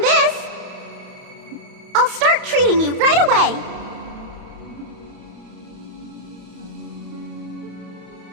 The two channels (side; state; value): left; late; 31 ms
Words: I'll start treating you right away.